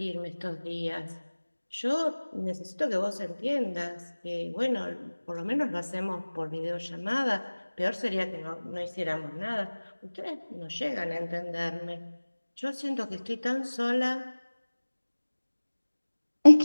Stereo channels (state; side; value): inverted; both; correlation -1.00